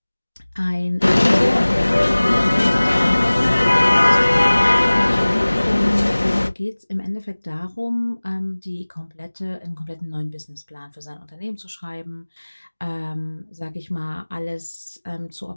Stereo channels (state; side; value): inverted; both; correlation -1.00